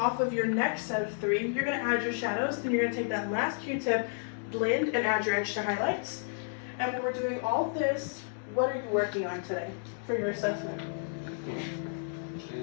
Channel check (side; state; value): right; silent; digital silence